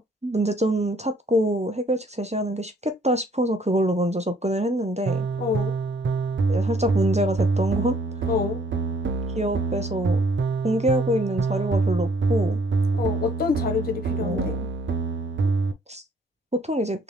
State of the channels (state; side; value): normal; both; correlation 0.62